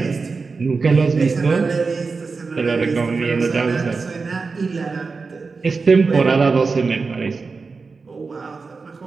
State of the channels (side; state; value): left; quieter; 4.4 dB